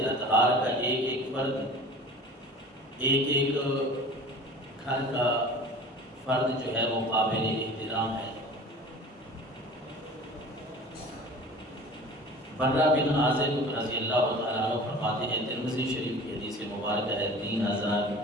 اطہار کا ایک ایک فرد، ایک ایک گھر کا فرد جو ہے وہ قابل احترام ہے۔ برہ بن عازب رضی اللہ تعالیٰ عنہ فرماتے ہیں، ترمذی شریف کی حدیث مبارکہ ہے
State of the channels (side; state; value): both; normal; correlation 0.41